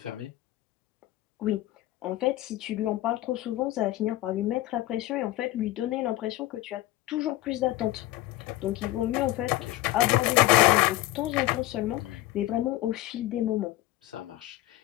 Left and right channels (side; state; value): right; quieter; 16.5 dB